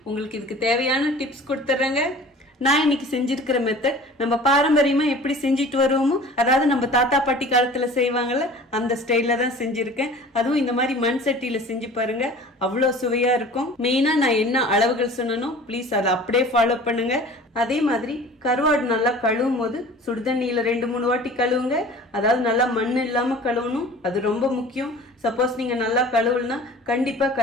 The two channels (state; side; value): normal; both; correlation 0.43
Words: உங்களுக்கு இதுக்கு தேவையான டிப்ஸ் கொடுத்துட்றேங்க. நான் இன்னைக்கு செஞ்சிருக்கிற மெத்தட் நம்ம பாரம்பரியமா எப்படி செஞ்சுட்டு வருவோமோ, அதாவது நம்ம தாத்தா பாட்டி காலத்துல செய்வாங்கல்ல அந்த ஸ்டைல்ல தான் செஞ்சிருக்கேன். அதுவும் இந்த மாதிரி மண் சட்டியில செஞ்சு பாருங்க, அவ்வளோ சுவையா இருக்கும். மெயினா நான் என்ன அளவுகள் சொன்னனோ ப்ளீஸ் அதை அப்படியே ஃபாலோ பண்ணுங்க. அதே மாதிரி கருவாடு நல்லா கழுவும் போது சுடுதண்ணியில 2-3 வாட்டி கழுவுங்க. அதாவது நல்லா மண் இல்லாம கழுவணும், அது ரொம்ப முக்கியம். சப்போஸ் நீங்க நல்லா கழுவுலனா கண்டிப்பா